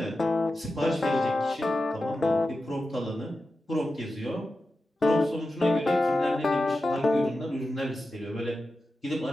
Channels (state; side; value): normal; both; correlation 0.92